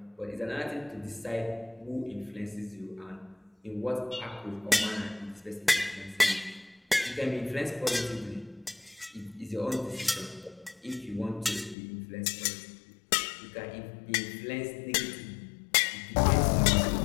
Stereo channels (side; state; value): right; drops out; at 11.8 s